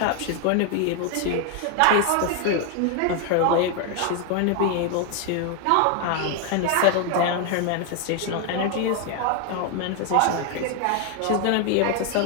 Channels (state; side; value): different; both; correlation 0.01